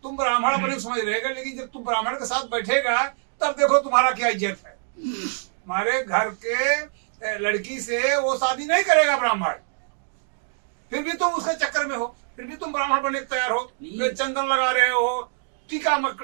ब्राह्मण अपने को समझ रहेगा, लेकिन जब तुम ब्राह्मण के साथ बैठेगा तब देखो तुम्हारा क्या इज्जत है। हमारे घर के लड़की से वो शादी नहीं करेगा ब्राह्मण, फिर भी तुम उसके चक्कर में हो, फिर भी तुम ब्राह्मण बनने तैयार हो, चंदन लगा रहे हो, टीका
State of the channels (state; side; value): silent; left; digital silence